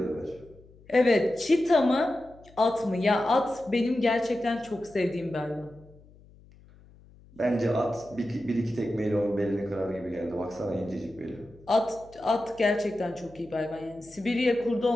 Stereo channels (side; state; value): left; noise; hum, 25 dB below the sound